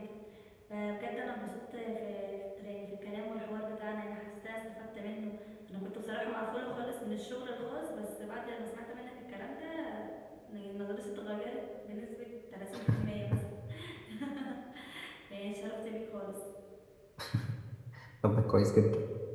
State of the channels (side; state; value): both; identical; correlation 1.00